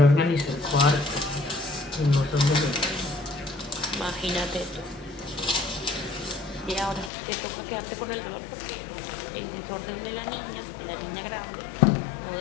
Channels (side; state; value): right; drops out; at 7.1 s